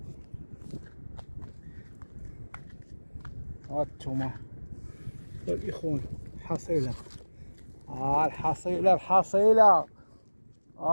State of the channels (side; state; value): both; inverted; correlation -1.00